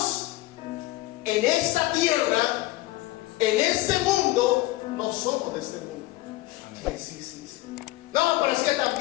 en esta tierra, en este mundo, no somos de este mundo. Sí. No, pero es que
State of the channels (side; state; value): right; quieter; 18.4 dB